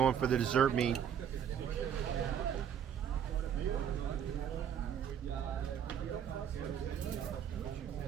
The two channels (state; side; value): quieter; left; 8.8 dB